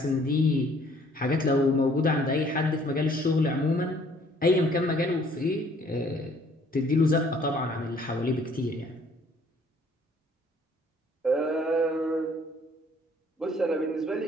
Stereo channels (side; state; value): both; normal; correlation 0.60